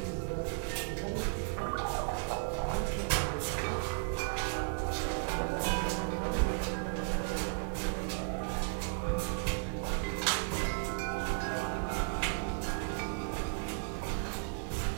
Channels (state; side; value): silent; left; digital silence